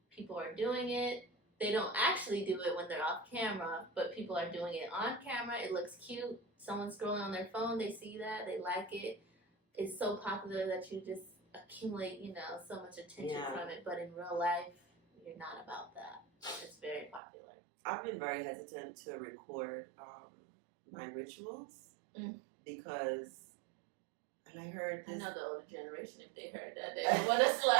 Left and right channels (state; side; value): drops out; left; at 17.2 s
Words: People are doing it. They don't actually do it when they're off camera, but people are doing it on camera. It looks cute. Someone's scrolling on their phone. They see that. They like it. It's so popular that you just accumulate, so much attention from it. But in real life, you're not about that. It's very popular. I've been very hesitant to record my rituals because, and I heard this. I know the older generation, if they heard that, they would want to